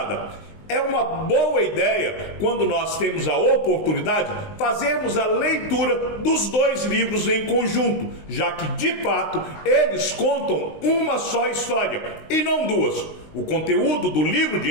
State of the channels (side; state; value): right; late; 19 ms